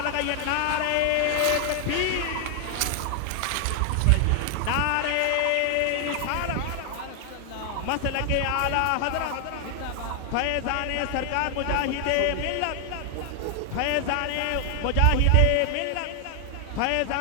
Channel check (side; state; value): both; different; correlation 0.00